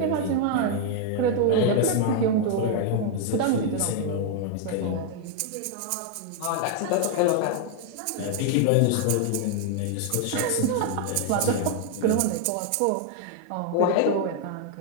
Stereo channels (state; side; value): different; both; correlation 0.00